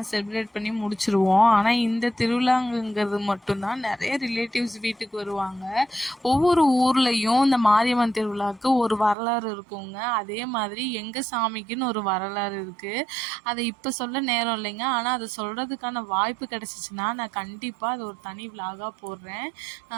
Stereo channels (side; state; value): left; drops out; at 9.2 s